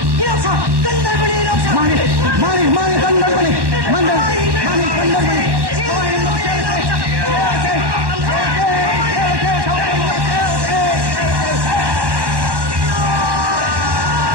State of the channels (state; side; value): late; left; 1.1 ms